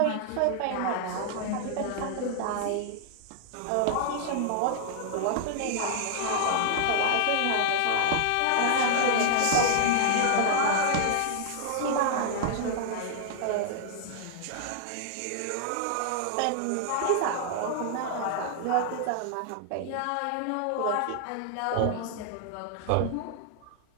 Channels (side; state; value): both; different; correlation 0.00